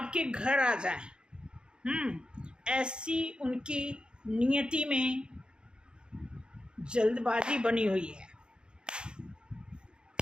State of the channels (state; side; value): late; left; 0.050 ms